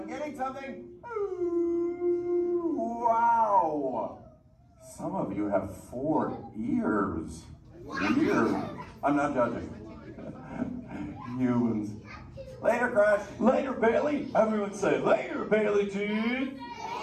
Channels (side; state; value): both; identical; correlation 1.00